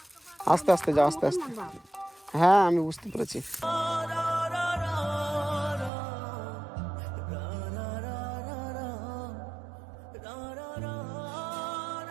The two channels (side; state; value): left; drops out; at 5.9 s